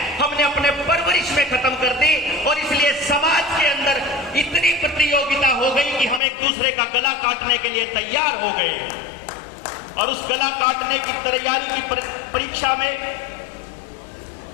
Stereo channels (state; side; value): drops out; right; at 6.2 s